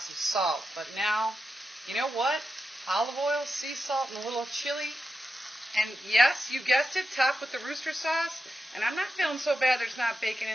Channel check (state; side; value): normal; both; correlation 0.89